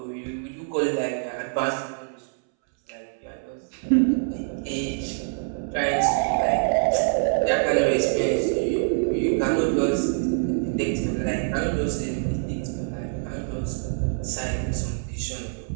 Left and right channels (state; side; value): silent; left; 62 dB below the other